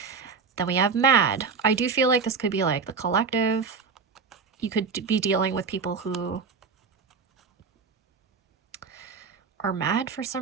Then we have mad. I do feel like this could be like the collective. You could be dealing with people who are mad for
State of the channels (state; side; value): quieter; left; 5.2 dB